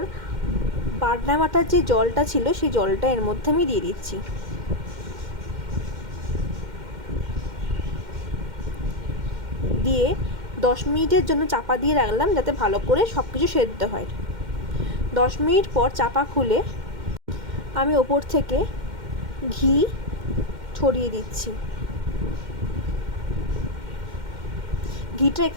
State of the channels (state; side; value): late; left; 2.1 ms